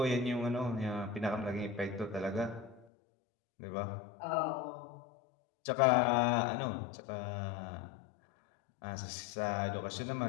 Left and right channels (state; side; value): drops out; right; at 2.9 s